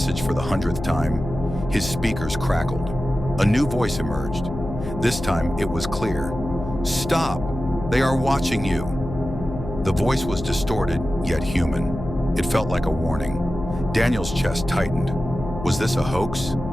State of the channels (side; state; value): left; noise; hum, 9 dB below the sound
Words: for the 100th time, his speakers crackled. A new voice emerged. This time, it was clear. "Stop! They are watching you!" The voice was distorted, yet human. It felt like a warning. Daniel's chest tightened. Was this a hoax,